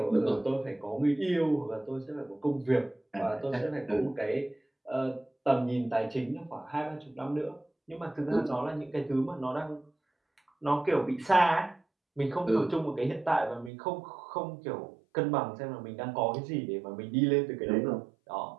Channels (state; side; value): drops out; left; at 13.7 s